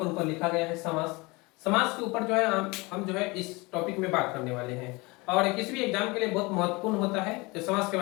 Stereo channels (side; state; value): right; quieter; 24.9 dB